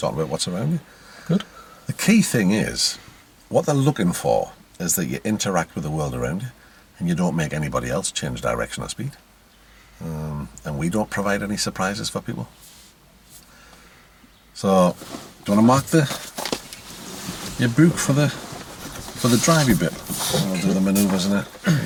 about what's around you. good. The key thing is, what they're looking for is that you interact with the world around you and you don't make anybody else change direction or speed. And we don't provide any surprises for people. So, do you want to mark your book for the drivey bit? I'll do the manoeuvres in a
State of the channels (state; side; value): identical; both; correlation 1.00